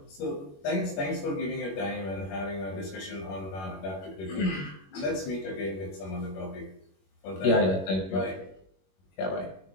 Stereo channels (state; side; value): late; right; 21 ms